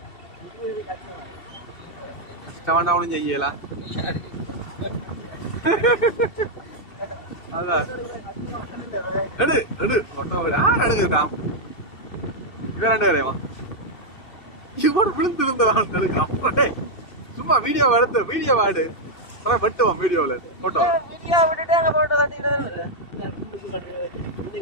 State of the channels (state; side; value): late; right; 2.7 ms